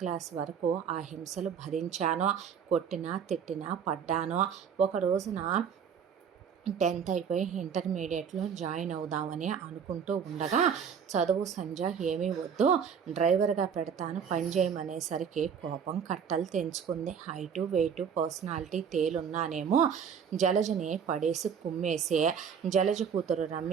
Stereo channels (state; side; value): quieter; left; 7.3 dB